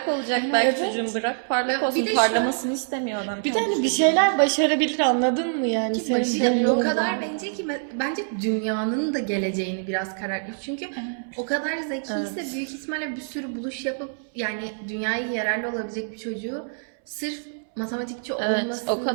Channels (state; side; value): silent; left; 62 dB below the other